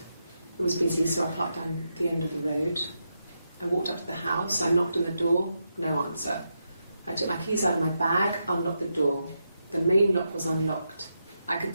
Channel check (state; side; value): inverted; both; correlation -0.85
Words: It was busy, so I parked down the end of the road. I walked up to the house, I knocked on the door, no answer. I took my keys out of my bag, unlocked the door. The main lock was unlocked. I could